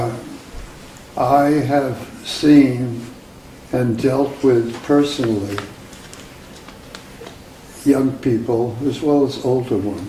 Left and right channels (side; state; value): both; identical; correlation 1.00